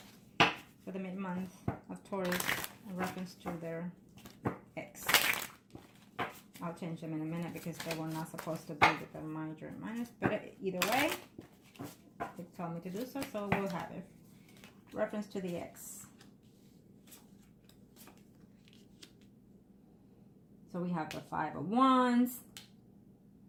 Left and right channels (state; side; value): identical; both; correlation 1.00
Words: for the mid-month of Taurus in reference to their ex. I'll change them in a minute because they were not supposed to be with the major and minus. But either way, they told me to do so, so we'll have it. Reference to the ex. So we have the Five of Wands,